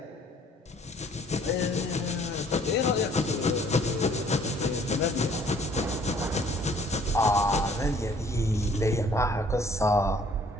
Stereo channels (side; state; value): both; normal; correlation 0.58